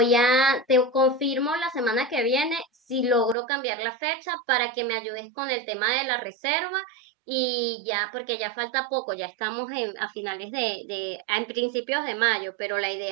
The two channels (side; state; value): left; drops out; at 3.4 s